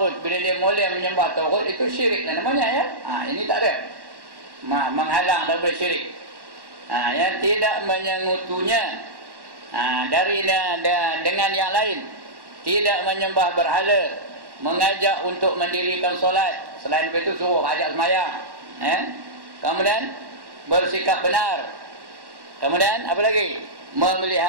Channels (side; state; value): left; late; 1.1 ms